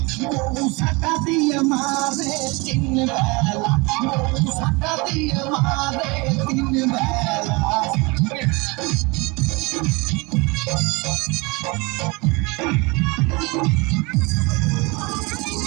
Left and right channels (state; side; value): quieter; left; 26.5 dB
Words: বউ ঝাঁটা দিয়ে মারে 3 বেলা বউ ঝাঁটা দিয়ে মারে 3 বেলা